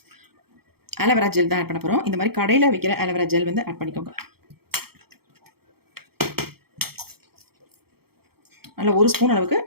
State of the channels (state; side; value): late; left; 0.95 ms